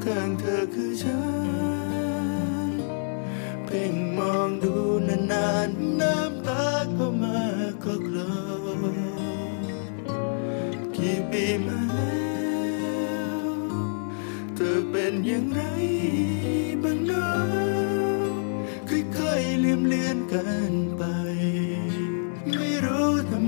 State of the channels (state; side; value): silent; right; 60 dB below the other